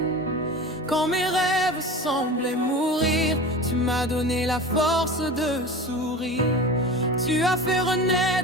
quand mes rêves semblaient mourir, tu m'as donné la force de sourire. Tu as fait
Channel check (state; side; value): normal; both; correlation 0.33